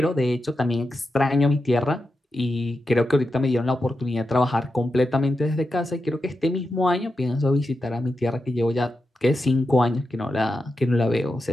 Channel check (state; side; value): normal; both; correlation 0.89